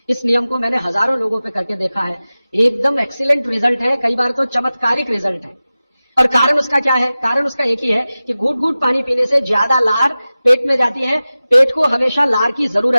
इस नियम को मैंने हजारों लोगों पे करके देखा है, एकदम एक्सीलेंट रिजल्ट है, कई बार तो चमत्कारिक रिजल्ट है। और कारण उसका क्या है? कारण उसका एक ही है कि घूट घूट पानी पीने से ज्यादा लार पेट में जाती है। पेट को हमेशा लार की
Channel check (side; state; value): both; inverted; correlation -0.96